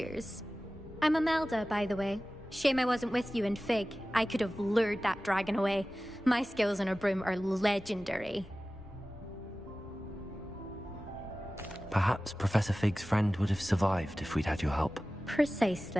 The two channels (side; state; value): both; normal; correlation 0.96